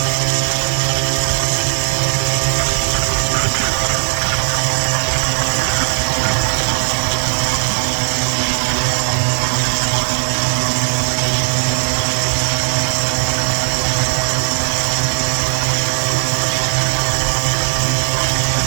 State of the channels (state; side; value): silent; left; digital silence